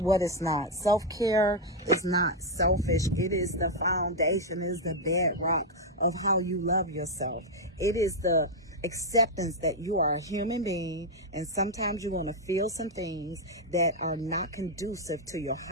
what it's not. Self-care is not selfish. It is the foundation, it is the bedrock of how you love yourself. It is the acceptance that you are a human being, and sometimes you're going to feel some things that are not conducive to your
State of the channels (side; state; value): both; normal; correlation 0.00